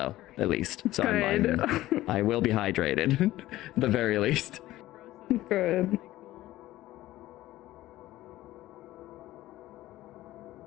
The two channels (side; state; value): right; quieter; 16.0 dB